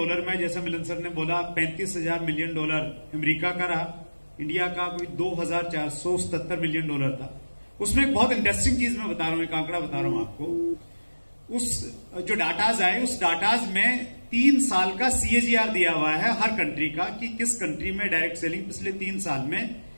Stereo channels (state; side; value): inverted; both; correlation -1.00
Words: में जैसा मिलन सर ने बोला 35,000 मिलियन डॉलर अमेरिका का रहा, इंडिया का कोई 2,477 मिलियन डॉलर था। उसमें एक बहुत इंटरेस्टिंग चीज मैं बता रहा हूं, एक आंकड़ा बता रहा हूं आपको। उस जो डाटाज आए उस डाटाज में 3 साल का CAGR दिया हुआ है हर कंट्री का कि किस कंट्री में डायरेक्ट सेलिंग पिछले 3 साल में